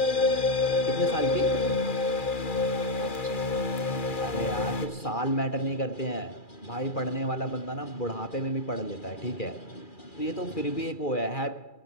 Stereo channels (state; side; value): late; right; 2.4 ms